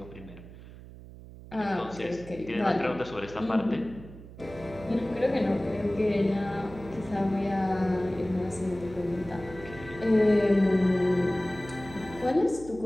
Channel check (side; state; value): right; noise; hum, 16 dB below the sound